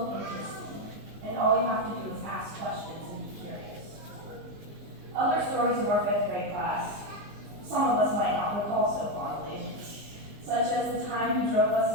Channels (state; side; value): late; left; 19 ms